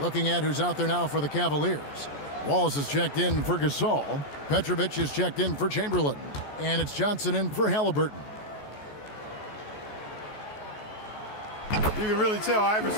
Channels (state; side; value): late; right; 14 ms